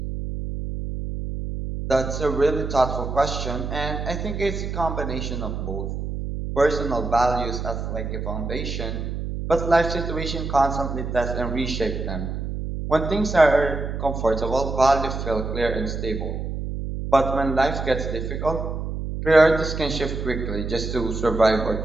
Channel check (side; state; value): right; noise; hum, 4 dB below the sound